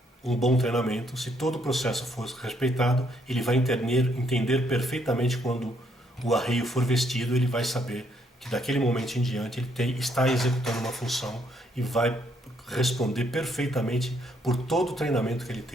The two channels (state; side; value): normal; both; correlation 0.71